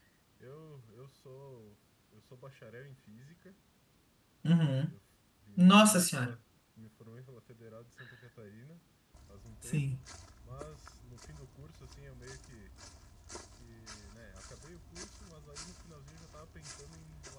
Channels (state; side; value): identical; both; correlation 1.00